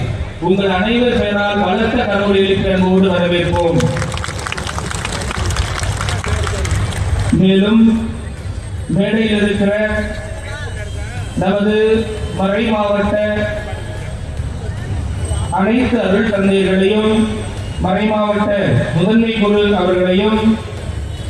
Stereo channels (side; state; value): both; identical; correlation 1.00